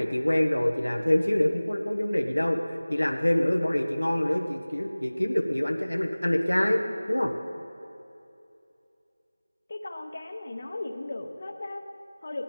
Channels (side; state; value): both; inverted; correlation -0.99